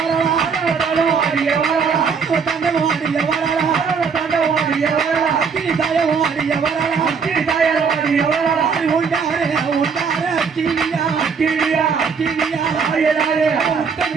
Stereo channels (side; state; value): left; quieter; 5.8 dB